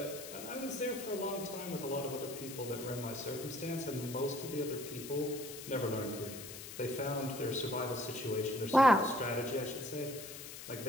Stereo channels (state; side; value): noise; left; hiss, 11 dB below the sound